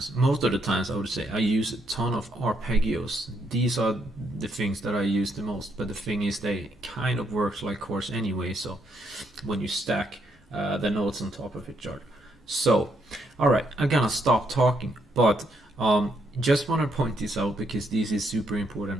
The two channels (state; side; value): normal; both; correlation 0.75